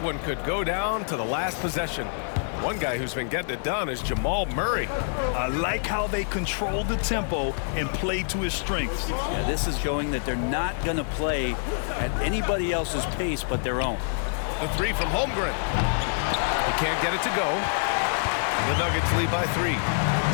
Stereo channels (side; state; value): right; silent; digital silence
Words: one could go down to the last possession. One guy who's been getting it done is Jamal Murray. I like how they control the tempo and play to his strengths. Yeah, this is showing that they're not going to play at anybody else's pace but their own. The 3 from Holmgren. He can't get it to go. The Nuggets lead by 3.